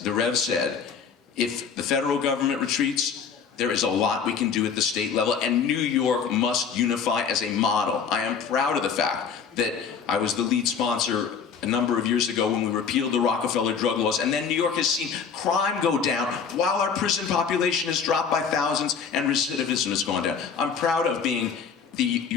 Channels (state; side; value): quieter; right; 6.4 dB